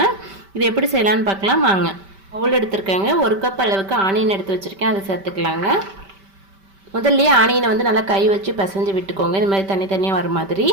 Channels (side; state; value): left; late; 5.1 ms